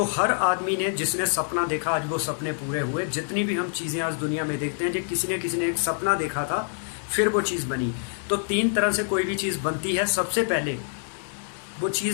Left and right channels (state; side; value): silent; right; 61 dB below the other